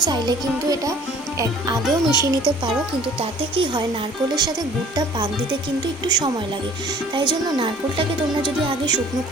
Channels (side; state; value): both; normal; correlation 0.51